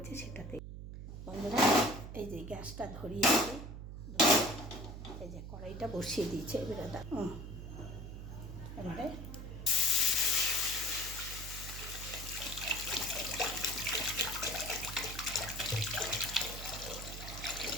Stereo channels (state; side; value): noise; right; hum, 9 dB below the sound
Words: সেটাতে। বন্ধুরা এই যে গ্যাসটা ধরিয়েছি, এই যে কড়াইটা বসিয়ে দিয়েছে, এবারে